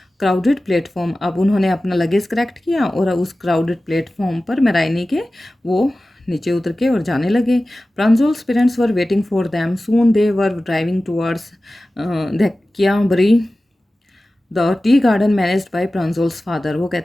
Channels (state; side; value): normal; both; correlation 0.96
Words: crowded platform. अब उन्होंने अपना लगेज कलेक्ट किया और उस क्राउडेड प्लेटफॉर्म पर मेराइनी के वो नीचे उतर के और जाने लगे। Pranjol's parents were waiting for them, soon they were driving towards Bari the tea garden managed by Pranjol's father. वो